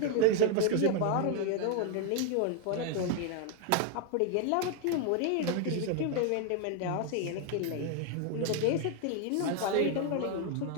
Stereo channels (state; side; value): different; both; correlation 0.00